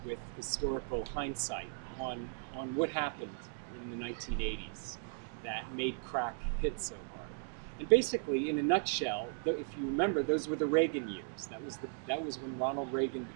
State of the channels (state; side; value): silent; left; 53 dB below the other